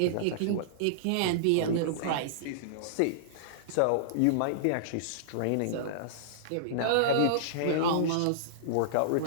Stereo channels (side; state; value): both; different; correlation -0.02